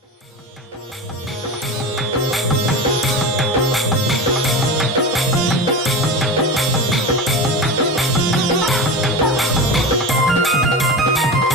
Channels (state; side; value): normal; both; correlation 0.26